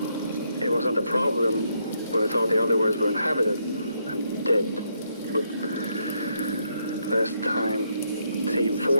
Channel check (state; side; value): inverted; both; correlation -0.76